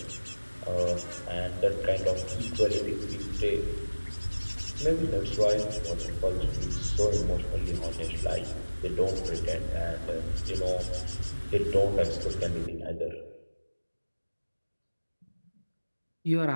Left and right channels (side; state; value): both; inverted; correlation -1.00